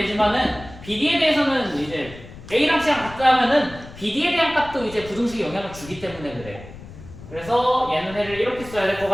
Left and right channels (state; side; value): noise; left; rumble, 16 dB below the sound